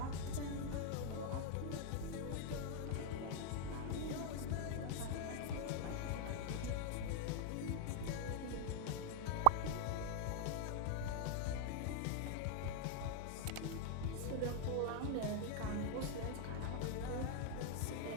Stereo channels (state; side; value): different; both; correlation 0.00